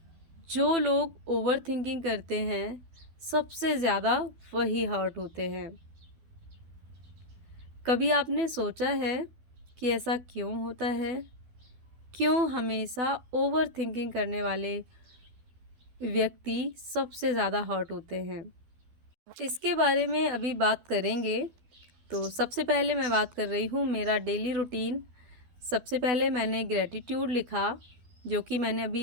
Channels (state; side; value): late; left; 12 ms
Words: जो लोग ओवर थिंकिंग करते हैं सबसे ज़्यादा वही हर्ट होते हैं। कभी आपने सोचा है कि ऐसा क्यों होता है? क्यों हमेशा ओवर थिंकिंग करने वाले व्यक्ति सबसे ज़्यादा हर्ट होते हैं? इसके बारे में अभी बात करेंगे। तो सबसे पहले मैं बात कर रही हूँ मेरा डेली रूटीन। सबसे पहले मैंने ग्रेटिट्यूड लिखा, जो कि मैंने